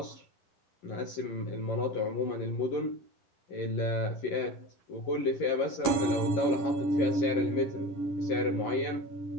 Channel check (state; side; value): late; right; 11 ms